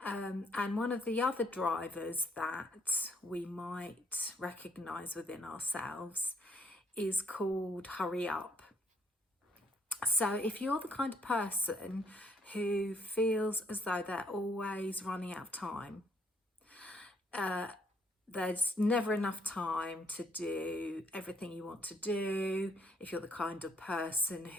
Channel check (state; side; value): normal; both; correlation 0.68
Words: And one of the other drivers that we might recognize within ourselves is called hurry up. So if you're the kind of person who feels as though they're always running out of time, there's never enough time to do everything you want to do, if you're the kind of person